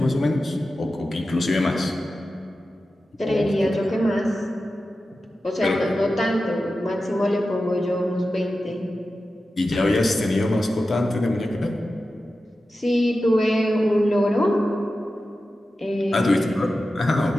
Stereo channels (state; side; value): normal; both; correlation 0.93